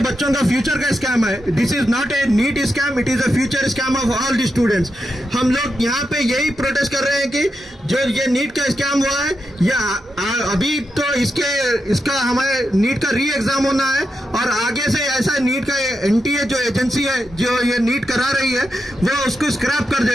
का फ्यूचर का स्कैम है। This is not a NEET scam, it is a future scam of all the students. हम लोग यहाँ पे यही प्रोटेस्ट कर रहे हैं कि जो ये नीट का स्कैम हुआ है, ये अभी तो इसका हमारे नीट का री एग्जाम होना है और आगे से ऐसा नीट का NTA जो एजेंसी है जो ये नीट करा रही है वो उसको स्क्रैप कर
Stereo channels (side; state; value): both; normal; correlation 0.86